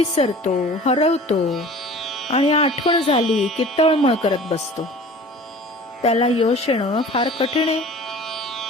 हरवतो आणि आठवण झाली की तळमळ करत बसतो, त्याला यश येणं फार कठीण आहे.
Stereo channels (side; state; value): both; normal; correlation 0.43